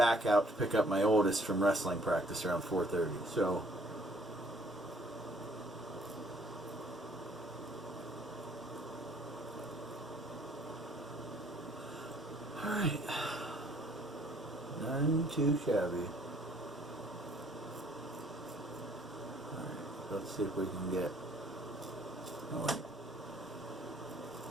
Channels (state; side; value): normal; both; correlation 0.61